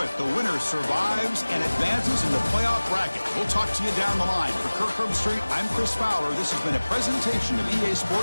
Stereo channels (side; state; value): both; inverted; correlation -1.00